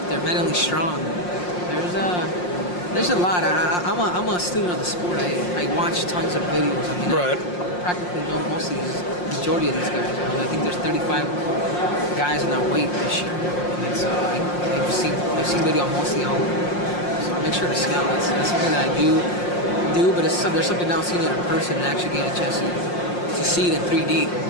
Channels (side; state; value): right; late; 5.6 ms